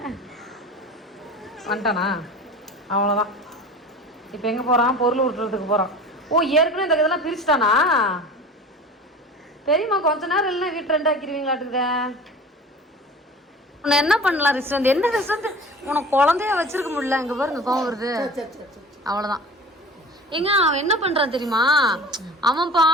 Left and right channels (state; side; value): normal; both; correlation 0.38